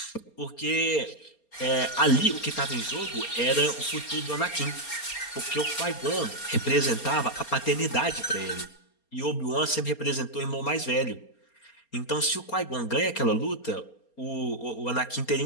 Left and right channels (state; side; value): late; right; 4.3 ms